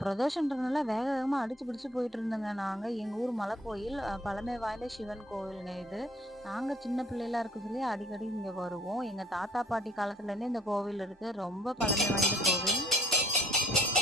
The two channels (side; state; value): both; normal; correlation 0.59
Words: பிரதோஷன்றதுனால வேக வேகமா அடிச்சு பிடிச்சு போயிட்டு இருந்தோங்க. நாங்க எங்க ஊர் மலை கோயில் பழமை வாய்ந்த சிவன் கோவிலுங்க இது. நாங்க சின்ன பிள்ளைகளா இருக்க சொல்லி அடிக்கடி இங்க வருவோம். எங்க தாத்தா பாட்டி காலத்துல இருந்தே இந்த கோவில் இருக்கு. ரொம்ப பழமை வாய்ந்த கோவில்.